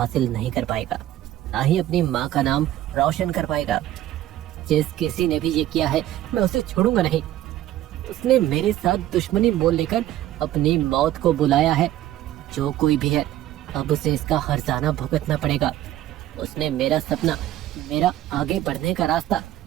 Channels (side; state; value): left; quieter; 13.6 dB